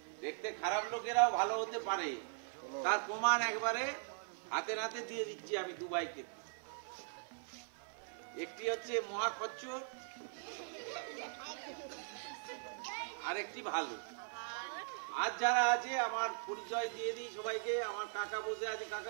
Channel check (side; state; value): left; silent; 51 dB below the other